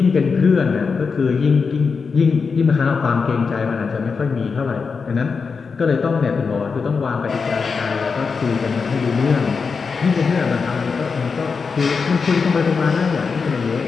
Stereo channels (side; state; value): right; quieter; 5.2 dB